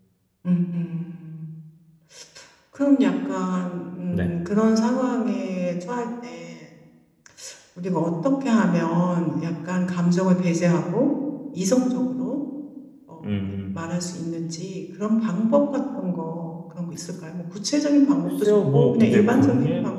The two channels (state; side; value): identical; both; correlation 1.00